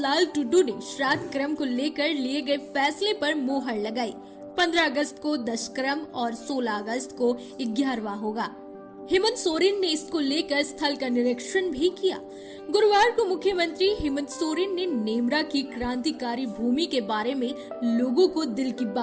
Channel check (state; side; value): identical; both; correlation 1.00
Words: टुडू ने श्राद्ध क्रम को लेकर लिए गए फैसले पर मोहर लगाई। 15 अगस्त को 10 क्रम और 16 अगस्त को 11वां होगा। हेमंत सोरेन ने इसको लेकर स्थल का निरीक्षण भी किया। गुरुवार को मुख्यमंत्री हेमंत सोरेन ने नेमरा की क्रांतिकारी भूमि के बारे में लोगों को दिल की